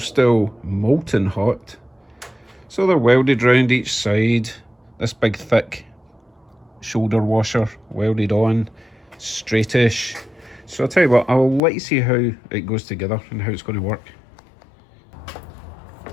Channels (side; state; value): right; drops out; at 11.6 s